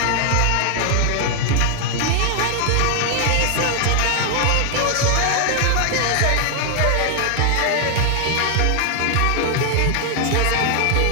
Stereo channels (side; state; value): both; different; correlation 0.00